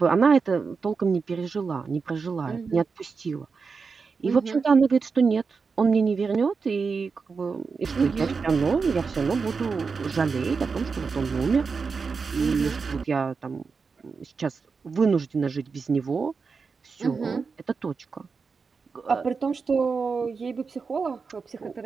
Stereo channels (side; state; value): left; quieter; 5.0 dB